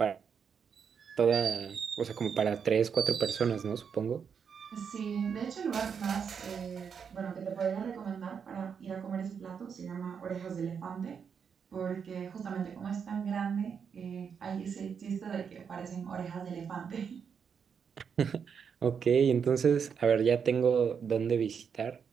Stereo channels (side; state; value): left; quieter; 6.8 dB